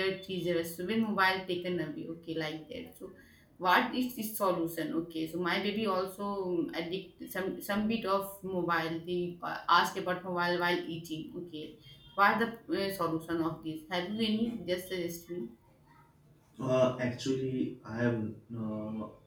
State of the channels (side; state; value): both; identical; correlation 1.00